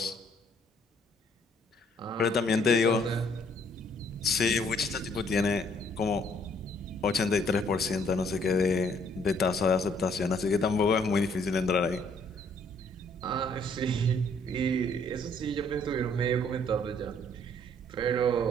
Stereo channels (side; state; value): both; normal; correlation 0.64